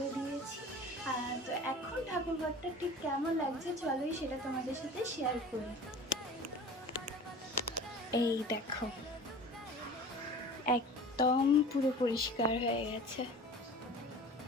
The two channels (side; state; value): both; normal; correlation 0.40